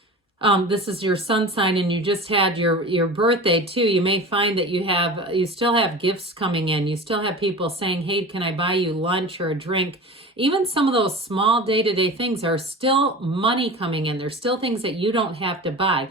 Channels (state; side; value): normal; both; correlation 0.35